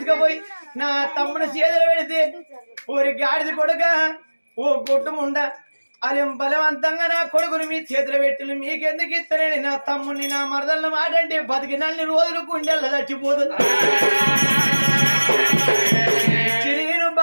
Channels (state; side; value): inverted; both; correlation -1.00